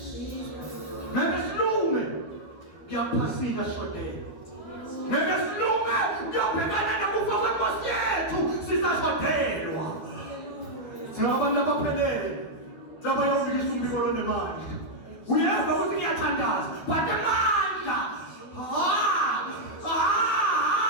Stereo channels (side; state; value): right; late; 12 ms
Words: phasika shodela. Ngeke silume kuyobhekana nokufa kwenkosi yethu sisashodelwa. Singabantu abaphelele laba yawubikisa umbiko lonemali. Uyezwa ukuthi ngiyathandaza but amandla